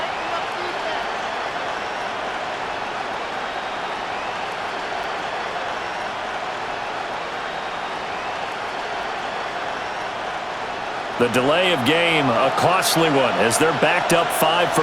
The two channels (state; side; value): identical; both; correlation 1.00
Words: The delay of game, a costly one, as they're backed up 5 for